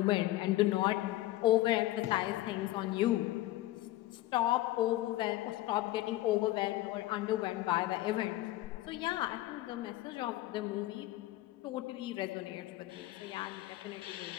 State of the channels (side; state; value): right; quieter; 16.7 dB